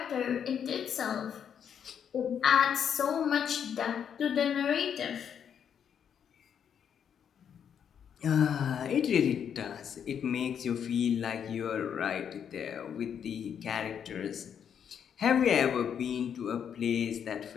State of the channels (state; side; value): quieter; right; 8.1 dB